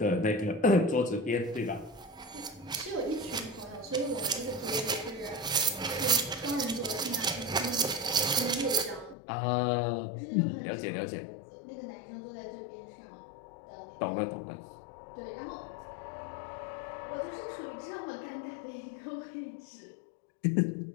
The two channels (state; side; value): drops out; right; at 9.2 s